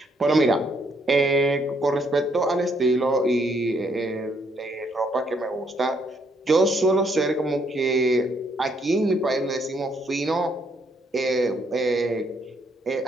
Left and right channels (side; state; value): both; normal; correlation 0.71